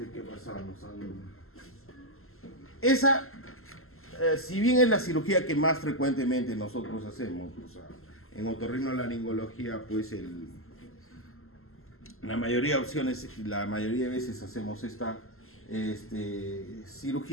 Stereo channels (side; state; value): right; late; 0.62 ms